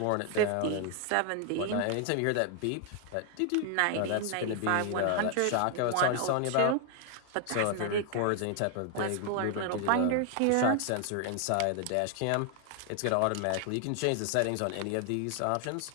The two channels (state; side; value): different; both; correlation 0.00